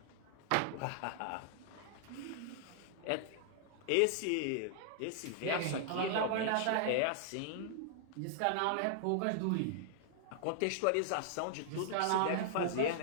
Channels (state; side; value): different; both; correlation -0.01